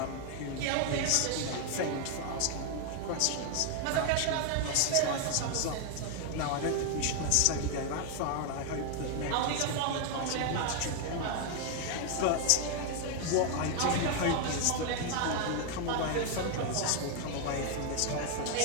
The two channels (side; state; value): both; different; correlation 0.00